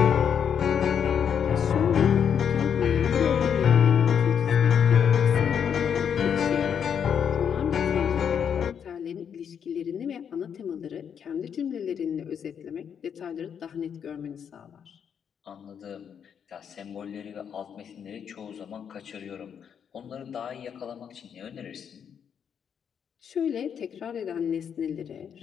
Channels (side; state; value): right; quieter; 7.8 dB